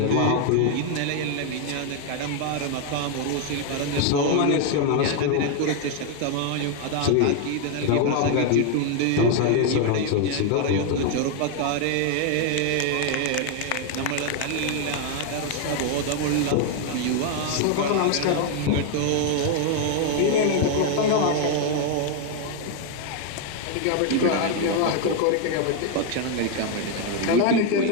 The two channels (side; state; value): both; different; correlation 0.01